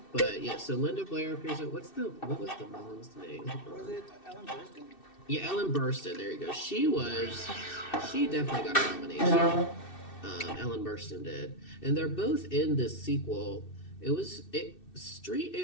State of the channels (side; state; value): right; late; 2.6 ms